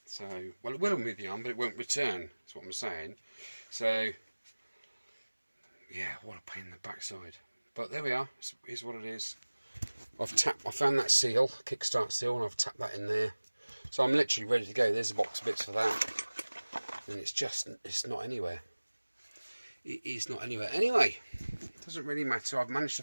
So, well, it will move the arm, but it won't return. That's what I'm saying. So, yeah, what a pain in the backside. But there we are. Here's what it is. I found that seal, kickstart seal, and I've tapped that in there. So I'm literally ready to go. There's a box of bits for that. and it's not anywhere. It is not anywhere. Anyway, doesn't really matter. I've managed to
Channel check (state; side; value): inverted; both; correlation -1.00